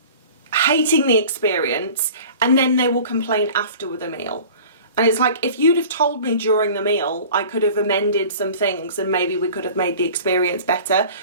hating the experience and then they will complain after the meal. And it's like, if you'd have told me during the meal, I could have amended some things and maybe we could have made the experience better.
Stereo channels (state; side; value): inverted; both; correlation -0.43